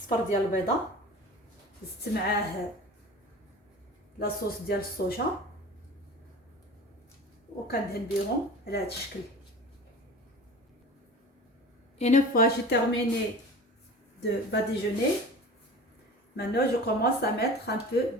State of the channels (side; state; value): both; normal; correlation 0.37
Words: ديال البيضه، زدت معاه لاصوص ديال الصوجا وكندهن بيهم على هذا الشكل. Une fois j'ai terminé de badigeonner, maintenant je commence à mettre un peu